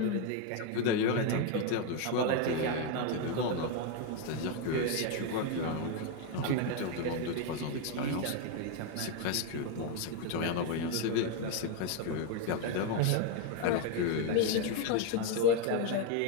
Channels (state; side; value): different; both; correlation 0.01